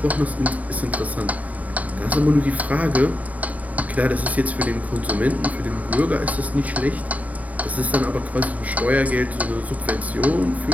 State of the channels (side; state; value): left; late; 0.071 ms